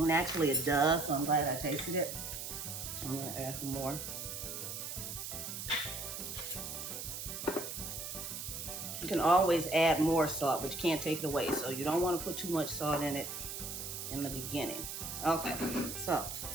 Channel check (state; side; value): noise; right; hiss, 6 dB below the sound